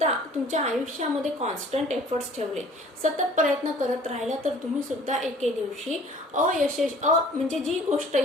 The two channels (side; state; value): both; normal; correlation 0.51